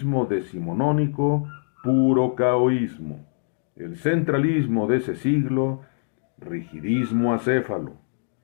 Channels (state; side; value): silent; right; digital silence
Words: decimonónico, puro caoísmo. El centralismo de ese siglo, rigidismo acéfalo.